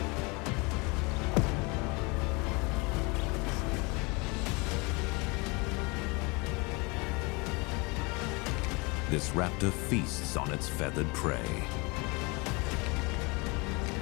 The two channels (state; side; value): quieter; right; 27.9 dB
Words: This raptor feasts on its feathered prey.